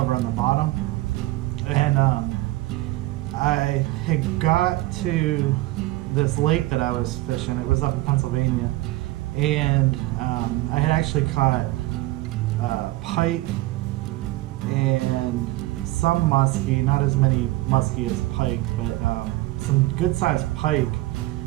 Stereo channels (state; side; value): quieter; left; 18.5 dB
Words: on the bottom. And I had got to this lake that I was fishing. It was up in Pennsylvania, and I had actually caught pike and some muskie, not as many muskie as pike, but some good sized pike